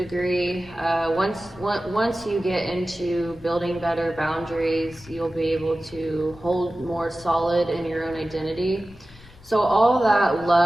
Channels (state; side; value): noise; left; rumble, 23 dB below the sound